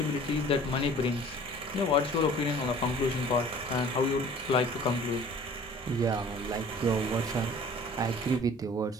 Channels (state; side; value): normal; both; correlation 0.48